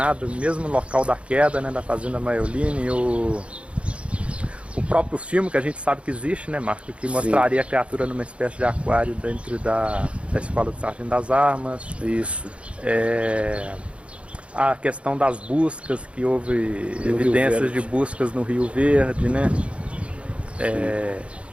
ao mesmo local da queda, né? Da Fazenda Maiolini, e o próprio filme que a gente sabe que existe, né, Marco? Que mostraria a criatura numa espécie de aquário dentro da Escola do Sargento das Armas. Isso. A questão das buscas, que houve evidências de buscas no Rio Verde, né?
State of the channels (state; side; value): late; left; 0.060 ms